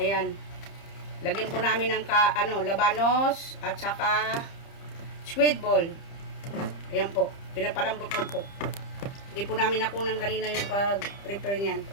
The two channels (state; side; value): late; right; 30 ms